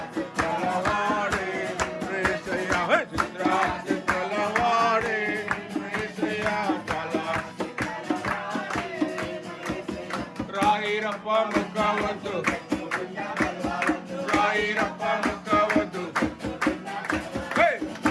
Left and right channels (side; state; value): both; identical; correlation 1.00